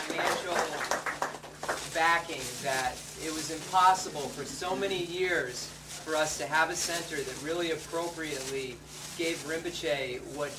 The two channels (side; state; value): both; identical; correlation 1.00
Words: financial backing that it was impossible for so many years for us to have a center that really appropriately gave Rinpoche what